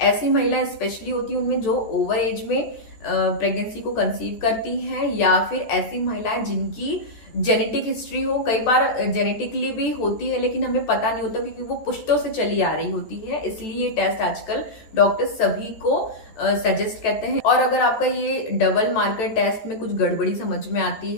ऐसी महिलाएं स्पेशली होती हैं उनमें जो ओवर एज में प्रेगनेंसी को कंसीव करती हैं, या फिर ऐसी महिलाएं जिनकी जेनेटिक हिस्ट्री हो। कई बार जेनेटिकली भी होती है लेकिन हमें पता नहीं होता, क्योंकि वो पुश्तों से चली आ रही होती है। इसलिए ये टेस्ट आजकल डॉक्टर सभी को सजेस्ट करते हैं। और अगर आपका ये डबल मार्कर टेस्ट में कुछ गड़बड़ी समझ में आती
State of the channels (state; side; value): late; right; 14 ms